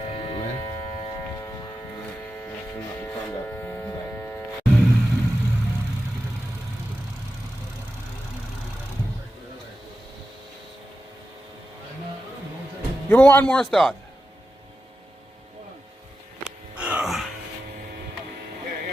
Give me one more start.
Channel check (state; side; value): normal; both; correlation 0.91